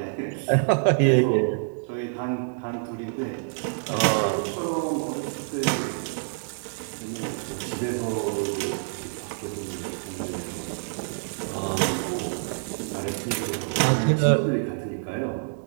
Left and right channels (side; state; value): left; silent; digital silence